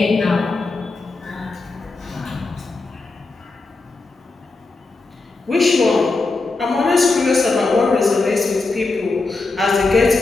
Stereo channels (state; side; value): quieter; right; 3.6 dB